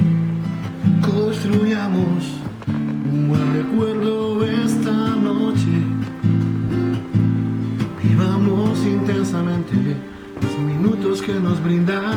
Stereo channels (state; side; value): identical; both; correlation 1.00